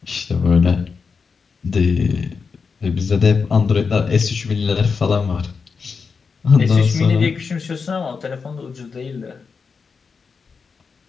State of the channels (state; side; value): quieter; right; 5.3 dB